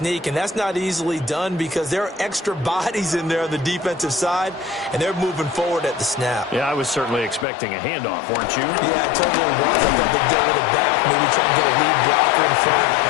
and that's not easily done because there are extra bodies in there on the defensive side, and they're moving forward at the snap. Yeah, I was certainly expecting a handoff, weren't you? Yeah, I totally was. I thought they'd go with it back, maybe try and get a lead blocker in front.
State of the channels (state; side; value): drops out; right; at 7.5 s